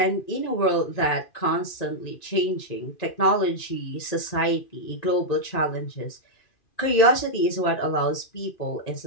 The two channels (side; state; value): right; late; 2.5 ms